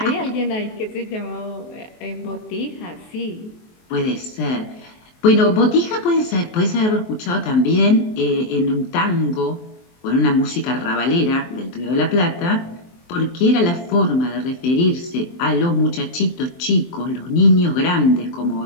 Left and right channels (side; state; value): right; late; 23 ms